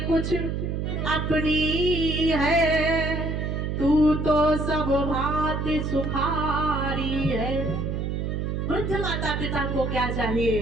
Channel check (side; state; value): right; noise; hum, 2 dB below the sound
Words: कुछ अपनी है, तू तो सब भांति सुखारी है। वृद्ध माता पिता को क्या